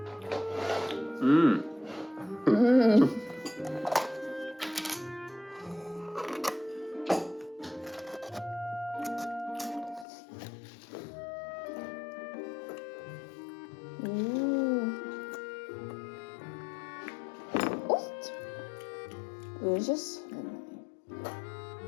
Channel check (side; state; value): right; drops out; at 10.1 s